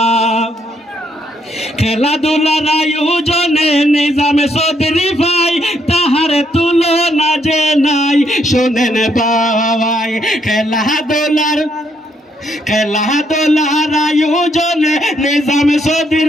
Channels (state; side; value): normal; both; correlation 0.73